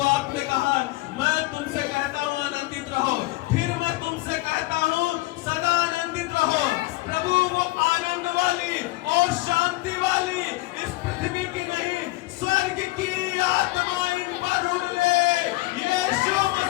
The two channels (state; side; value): quieter; right; 20.5 dB